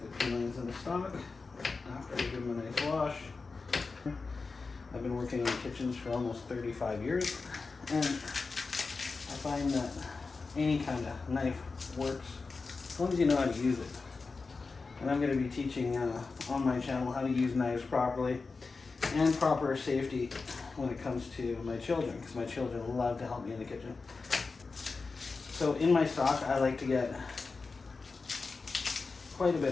the peelings in the stock after I give them a nice wash. I've been working in kitchens for almost 35 years, and I find that any kind of knife works as long as you know how to use it. And I'm going to be teaching on my channel how to use knives properly and proper safety when it comes to my children, because my children love to help me in the kitchen. So in my stock, I like to get quite a bit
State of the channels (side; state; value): right; quieter; 4.2 dB